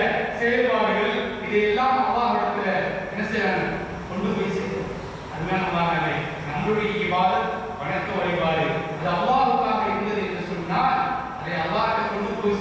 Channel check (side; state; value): both; identical; correlation 1.00